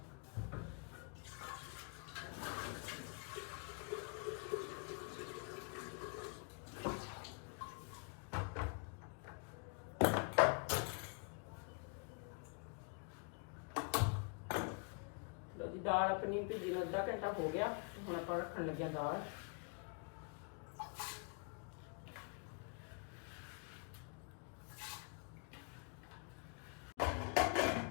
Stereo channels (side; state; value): right; quieter; 38.2 dB